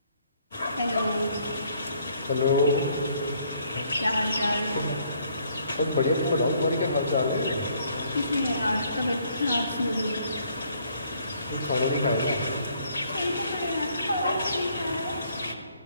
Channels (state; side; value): inverted; both; correlation -0.66